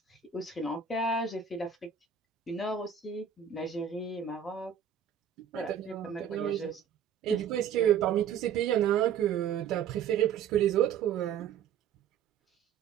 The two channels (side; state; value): left; quieter; 8.1 dB